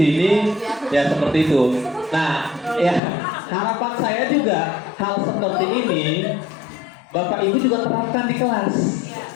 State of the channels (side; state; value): right; drops out; at 3.0 s